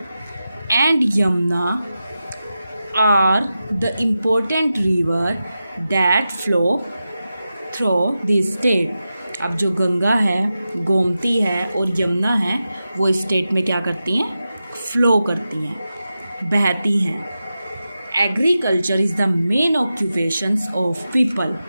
and Yamuna are the important river that flow through this state. अब जो गंगा है, गोमती है और यमुना है, वो स्टेट में क्या करती हैं, फ्लो करती हैं, बहती हैं। Agriculture is the main occupations of people,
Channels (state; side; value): inverted; both; correlation -0.91